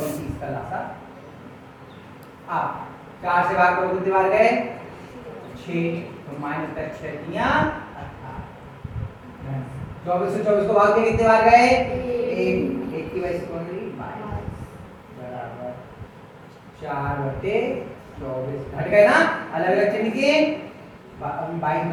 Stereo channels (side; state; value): both; identical; correlation 1.00